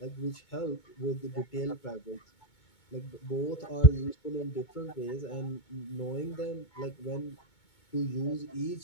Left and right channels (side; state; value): right; late; 2.2 ms